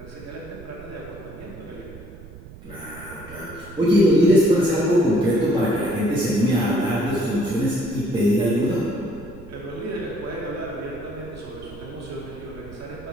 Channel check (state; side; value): noise; right; rumble, 17 dB below the sound